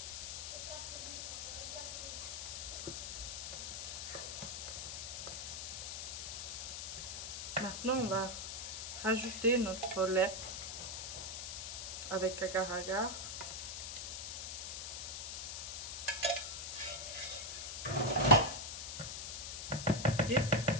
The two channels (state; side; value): noise; left; hiss, 5 dB below the sound